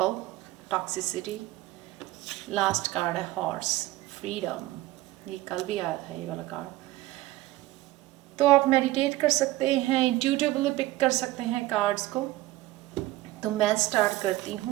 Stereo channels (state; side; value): quieter; left; 17.4 dB